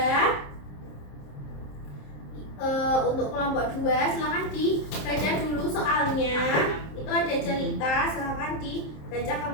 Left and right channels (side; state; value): right; late; 27 ms